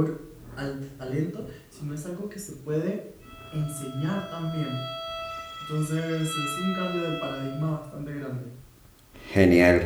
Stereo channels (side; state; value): both; identical; correlation 1.00